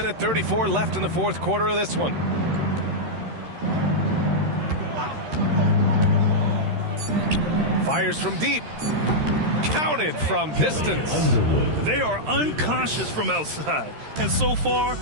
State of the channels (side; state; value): left; late; 13 ms